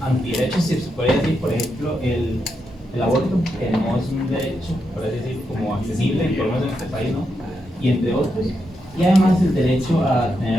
si se puede decir, por ejemplo, el aborto, que no es un derecho, por así decir, como accesible, por lo menos en este país, ¿no? Y entre otros. Y además el derecho a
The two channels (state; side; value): normal; both; correlation 0.84